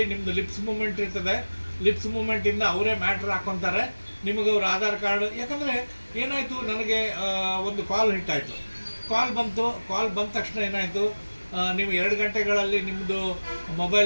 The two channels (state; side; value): inverted; both; correlation -1.00